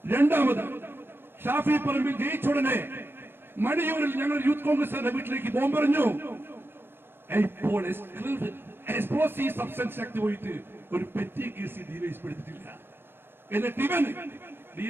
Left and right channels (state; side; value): late; left; 0.10 ms